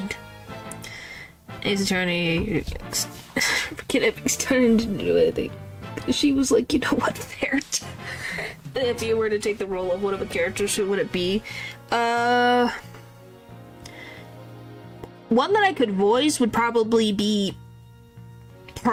His attorney He's turning to do anything. She was like, you know what, there. If you were to take the role of one of the characters, who would it be? One that I could voice would probably be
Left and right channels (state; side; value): identical; both; correlation 1.00